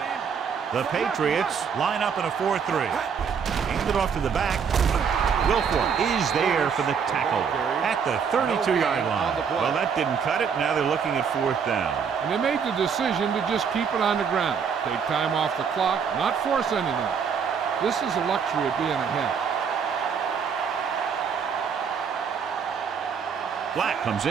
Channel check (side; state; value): left; quieter; 6.7 dB